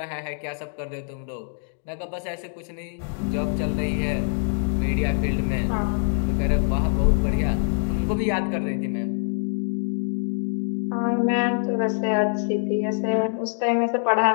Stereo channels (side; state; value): right; silent; 60 dB below the other